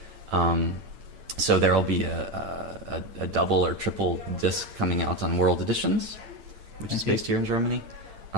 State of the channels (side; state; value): left; late; 8.9 ms